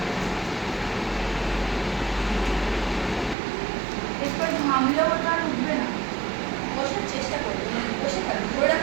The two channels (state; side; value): drops out; left; at 3.4 s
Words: এরপর ঘামলেও ওটা আর উঠবে না বসার চেষ্টা করবে বসে থাকবে ধরে